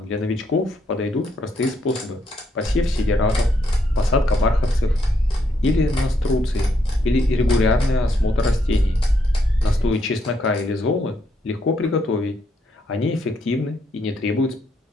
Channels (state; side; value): normal; both; correlation 0.76